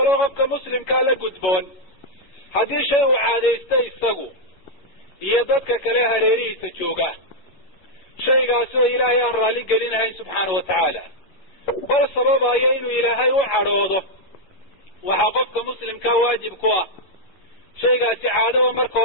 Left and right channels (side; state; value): right; late; 11 ms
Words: qofka muslimkaa la gudboon haddii shay uu caadaystay isagu iyo dadka kale hareerihiisa jooga, shaygaasi oo ilaahay aan raalli gelinahayn subxaana watacaala, bal sababayo inuu ilaahay u cadhoodo, waxaa qofka muslimkaa waajib ku ah shaygaasi caadaba marka